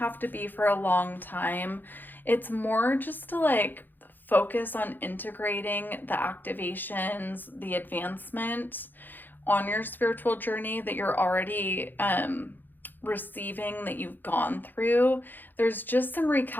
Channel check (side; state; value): right; late; 0.089 ms